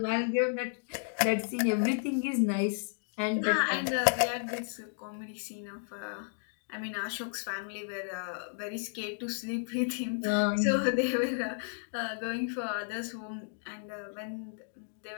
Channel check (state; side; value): silent; right; digital silence